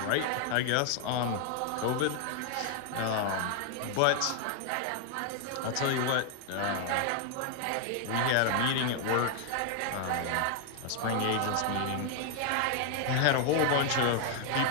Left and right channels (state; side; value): different; both; correlation 0.00